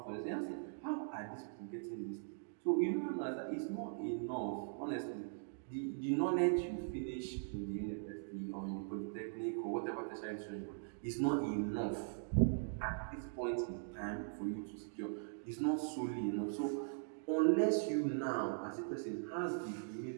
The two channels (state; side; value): silent; left; digital silence